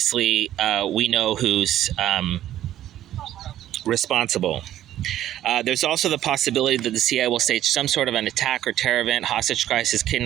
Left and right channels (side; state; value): left; quieter; 12.4 dB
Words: we know who's responsible. There's also the possibility that the CIA will stage some sort of an attack or terror event, hostage crisis,